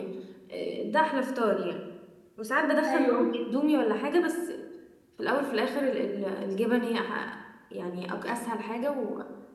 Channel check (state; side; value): identical; both; correlation 1.00